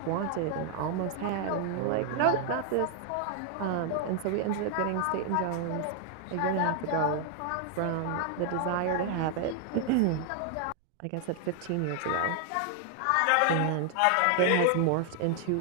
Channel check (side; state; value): both; different; correlation 0.00